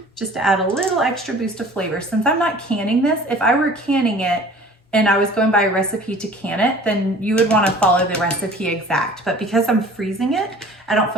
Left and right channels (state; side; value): normal; both; correlation 0.46